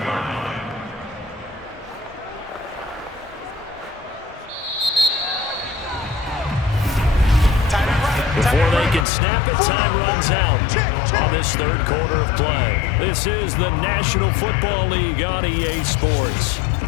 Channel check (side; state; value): right; drops out; at 9.1 s